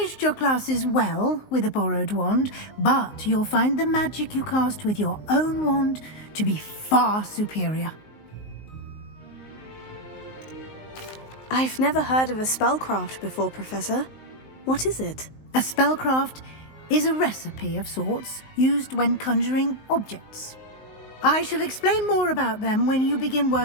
your classes well with a borrowed wand, but you'll find the magic you cast with your own wand to be far superior. I've never heard of a spellcraft before, Professor. What is it? A spellcraft is a recipe of sorts used when conjuring objects. I shall explain more about them when you begin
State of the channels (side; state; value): right; late; 19 ms